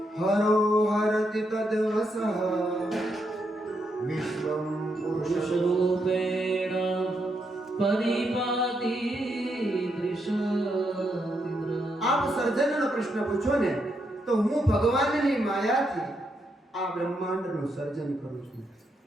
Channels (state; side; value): normal; both; correlation 0.80